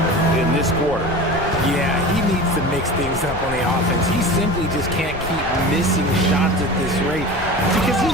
in this quarter. Yeah, he needs to mix things up on the offense. He simply just can't keep missing shots at this rate because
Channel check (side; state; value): left; noise; rumble, 12 dB below the sound